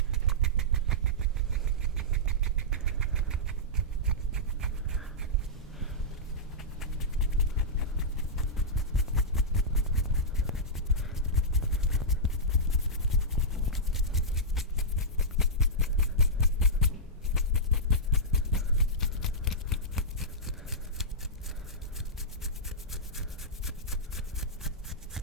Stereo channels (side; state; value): both; normal; correlation -0.12